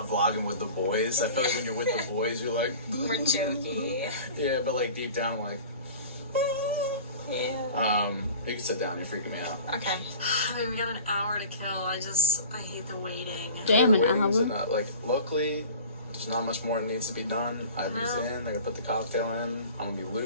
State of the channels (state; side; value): inverted; both; correlation -0.40